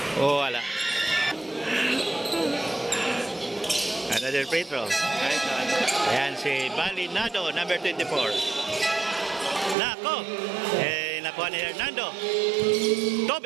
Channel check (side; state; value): left; drops out; at 9.8 s